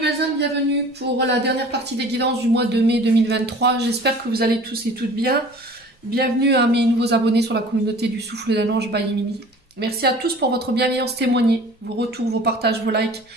belles âmes, bienvenue pour la dernière partie des guidances du mois de mai 2023. J'espère que vous allez tous et toutes bien. Bienvenue à mes nouveaux abonnés sur la communauté du Souffle d'un Ange by Mimi. Merci à tous pour votre bienveillance témoignée, vos retours, vos partages, vos likes.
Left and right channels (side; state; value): both; normal; correlation 0.45